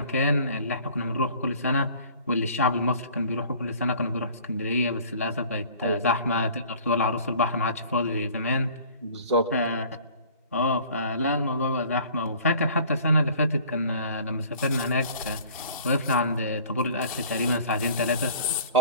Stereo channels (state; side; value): inverted; both; correlation -0.50